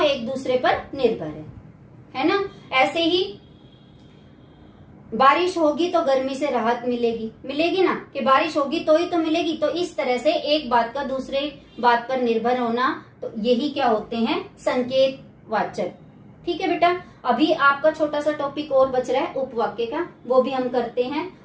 एक दूसरे पर निर्भर है ना। ऐसे ही बारिश होगी तो गर्मी से राहत मिलेगी ना, कि बारिश होगी तो ही तो मिलेगी। तो इस तरह से एक बात का दूसरे बात पर निर्भर होना, तो यही क्या होते हैं? संकेतवाचक। ठीक है बेटा, अभी आपका छोटा सा टॉपिक और बच रहा है उपवाक्य का, वो भी हम करते हैं।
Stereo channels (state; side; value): identical; both; correlation 1.00